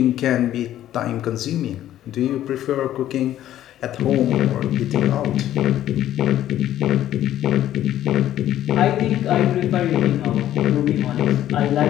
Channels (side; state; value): right; quieter; 12.4 dB